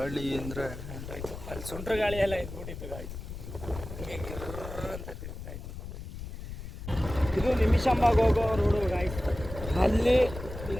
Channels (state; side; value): noise; left; rumble, 10 dB below the sound